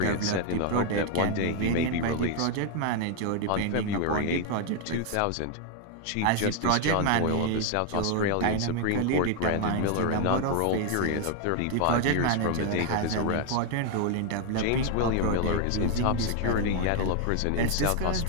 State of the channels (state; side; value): different; both; correlation 0.00